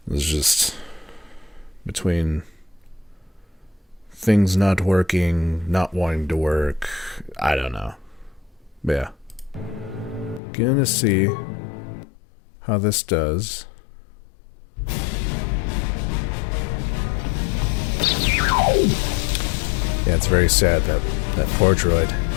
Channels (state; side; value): drops out; right; at 10.4 s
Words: It was just between things not working, not wanting to work. I don't know. But yeah. Gonna see how this does. Yeah, it's very sad that poor droid